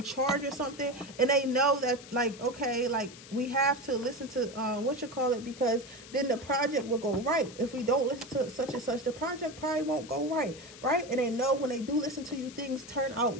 charge or something, and they know that, like, okay, like, we have to listen to because then the project will go right. If we don't listen to such and such, the project probably won't go right. And they know when they do listen to you, things turn out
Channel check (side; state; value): left; noise; hiss, 17 dB below the sound